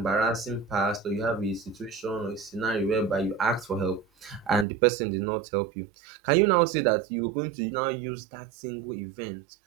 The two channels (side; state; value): left; drops out; at 4.7 s